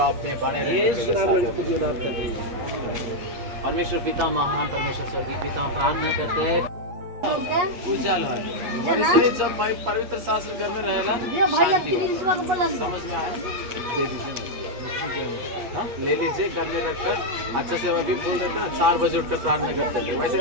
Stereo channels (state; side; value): late; left; 8.4 ms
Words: परमेश्वर पिता महान, परमेश्वर स्वर्गीय पिता, हम प्रार्थना करते हैं उजाला वैसे जब भाई पवित्र शास्त्र घर में रहेला शांति हो। समझ में आया? दे दीजिए, हाँ ले लीजिए, घर में रखकर अच्छे से वही बोल देते ना, 4 बजे उठकर प्रार्थना करते थे, वैसे